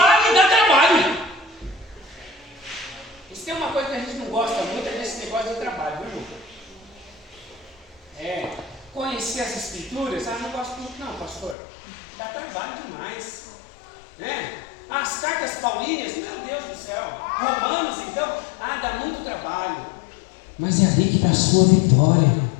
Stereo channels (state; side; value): drops out; right; at 11.6 s